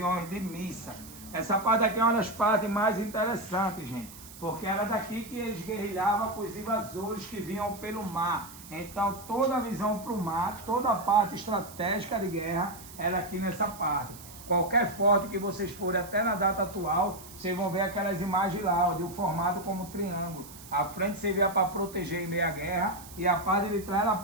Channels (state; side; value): noise; right; hiss, 17 dB below the sound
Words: de missa. Essa parte aqui é uma das partes mais interessantes, gente, porque era daqui que eles guerrilhavam com os invasores que vinham pelo mar. Então toda a visão para o mar, toda a parte estratégica de guerra era aqui nessa parte. Qualquer forte que vocês forem até na data atual, vocês vão ver aquelas imagens lá, de um formado como triângulo. A frente servia para proteger em meio à guerra, e a parte de trás era a